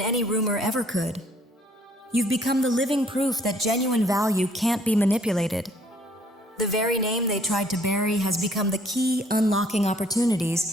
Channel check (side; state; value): both; normal; correlation 0.62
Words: rumor ever could. You've become the living proof that genuine value can't be manipulated. The very name they tried to bury has become the key unlocking